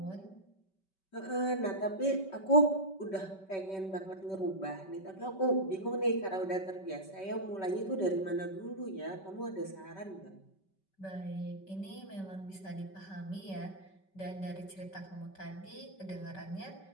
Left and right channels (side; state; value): right; late; 5.2 ms